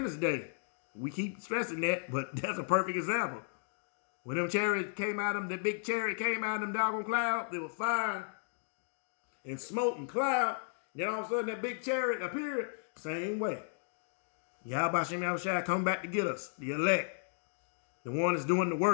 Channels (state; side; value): silent; right; digital silence